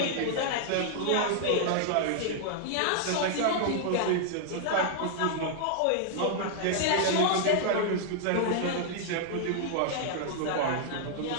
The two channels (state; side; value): different; both; correlation -0.01